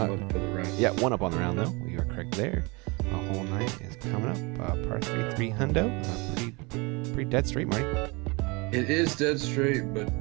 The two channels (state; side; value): quieter; left; 27.3 dB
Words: I'm up for the round. Yeah, 1 up on the round though. You are correct there. Hole 9 is coming up. Par 3 hundo. Pretty dead straight, Marty. It is dead straight, but